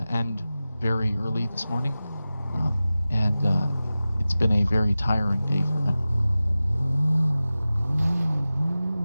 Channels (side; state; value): both; inverted; correlation -0.96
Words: end very early this morning, and it's been a very tiring day for him.